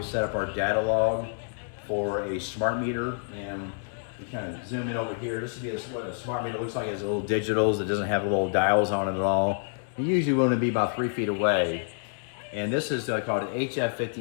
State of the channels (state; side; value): silent; right; digital silence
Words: set up our data log for a smart meter. And we kind of zoom in over here. This would be what a smart meter looks like. It has little digitals. It doesn't have little dials on it at all. You usually want to be about 3 feet away. And this is called an